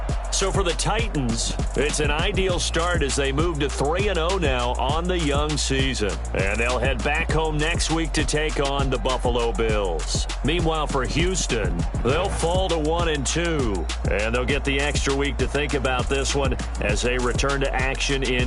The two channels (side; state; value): both; identical; correlation 1.00